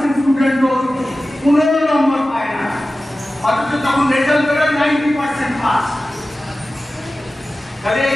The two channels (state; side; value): normal; both; correlation 0.95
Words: স্টুডেন্টও 15 নম্বর পায় না, অথচ তখন রেজাল্ট বেরোয় 90% পাস। তাহলে